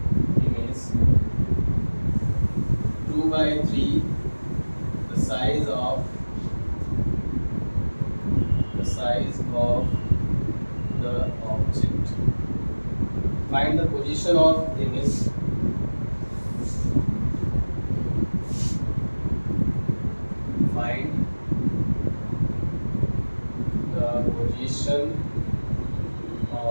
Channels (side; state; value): both; inverted; correlation -1.00